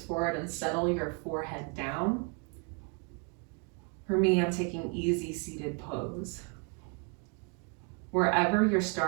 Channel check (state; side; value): quieter; left; 37.4 dB